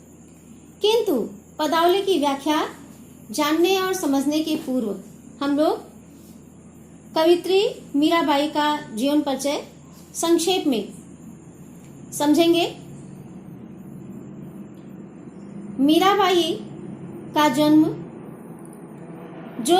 किंतु पदावली की व्याख्या जानने और समझने के पूर्व हम लोग कवित्री मीराबाई का जीवन परिचय संक्षेप में समझेंगे। मीराबाई का जन्म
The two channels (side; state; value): both; identical; correlation 1.00